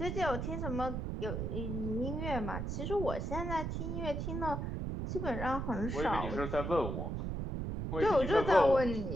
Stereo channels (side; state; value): right; noise; rumble, 3 dB below the sound